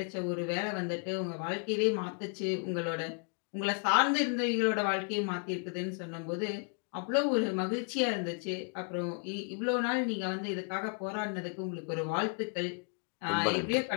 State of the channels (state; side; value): quieter; right; 39.7 dB